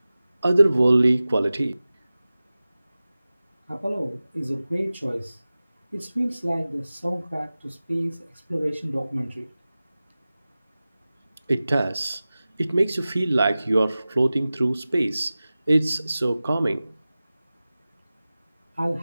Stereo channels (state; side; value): inverted; both; correlation -0.97